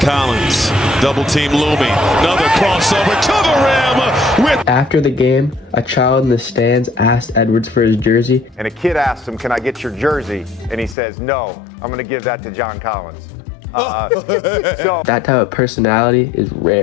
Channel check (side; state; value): right; drops out; at 11.0 s